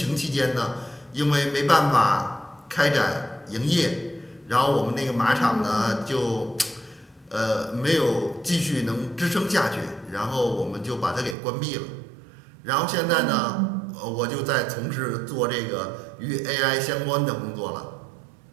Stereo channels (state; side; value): drops out; left; at 11.4 s